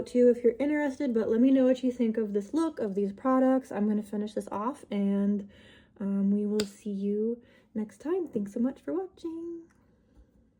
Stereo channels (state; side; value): identical; both; correlation 1.00